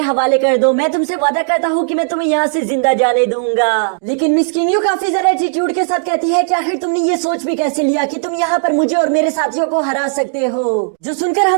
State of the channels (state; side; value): silent; left; digital silence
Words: हवाले कर दो, मैं तुमसे वादा करता हूँ कि मैं तुम्हें यहाँ से जिंदा जाने दूंगा। लेकिन मिस किंगयू काफी ज्यादा एटीट्यूड के साथ कहती है कि आखिर तुमने ये सोच भी कैसे लिया कि तुम यहाँ पर मुझे और मेरे साथियों को हरा सकते हो। जो सुनकर